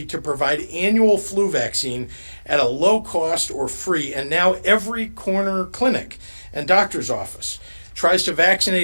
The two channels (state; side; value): inverted; both; correlation -1.00